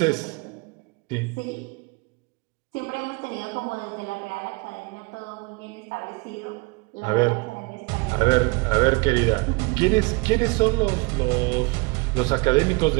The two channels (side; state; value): left; quieter; 27.9 dB